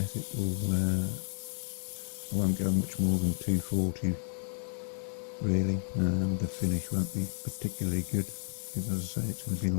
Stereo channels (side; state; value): right; silent; digital silence